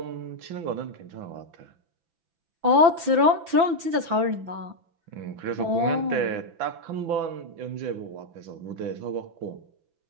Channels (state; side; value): late; left; 5.9 ms